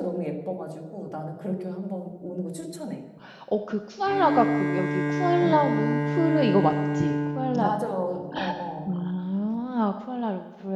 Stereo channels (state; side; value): identical; both; correlation 1.00